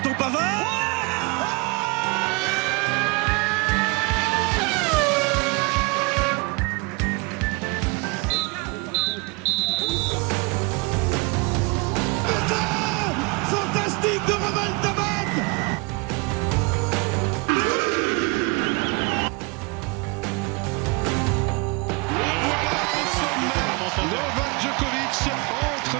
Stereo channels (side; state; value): left; quieter; 29.6 dB